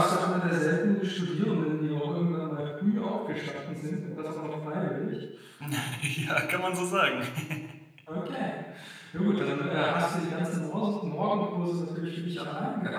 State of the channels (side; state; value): both; identical; correlation 1.00